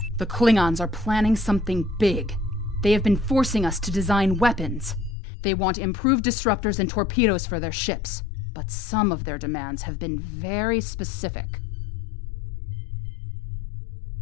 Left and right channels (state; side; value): drops out; right; at 5.2 s